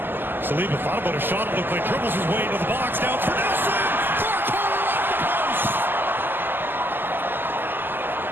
Saliba thought about a shot, it looked like dribbles his way into the box, down for Nelson! For a corner off the post!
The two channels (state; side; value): late; left; 0.094 ms